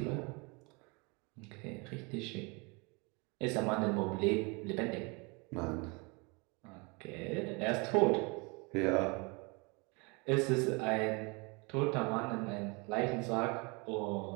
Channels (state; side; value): quieter; left; 29.7 dB